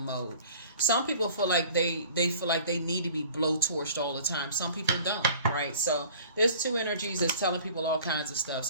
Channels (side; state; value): both; inverted; correlation -0.47